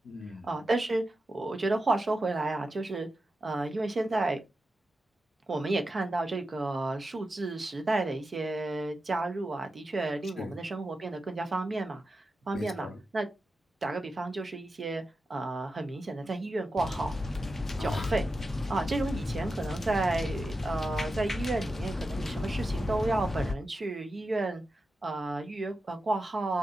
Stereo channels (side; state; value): both; normal; correlation 0.90